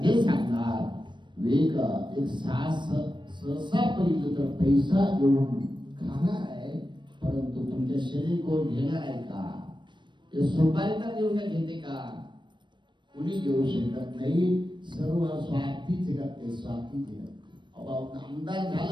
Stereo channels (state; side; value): late; left; 0.22 ms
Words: ते सांगणार वेग एक सहसा पहिलं तर पैसा घेऊन खाणार आहे, परंतु तुमच्या शरीर कोण घेणार आहे का? ते सुपारी तर देऊन घेते का? कुणी घेऊ शकत नाही. सर्व स्वार्थी जगत ते, स्वार्थी जगत. आमदार